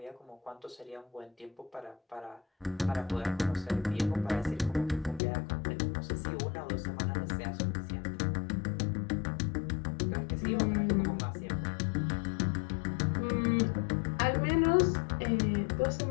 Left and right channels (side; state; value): right; drops out; at 5.2 s